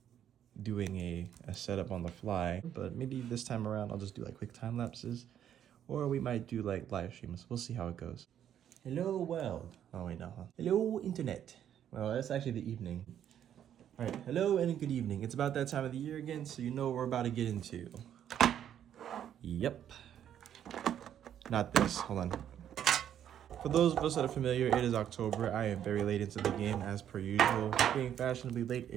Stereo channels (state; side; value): quieter; left; 10.0 dB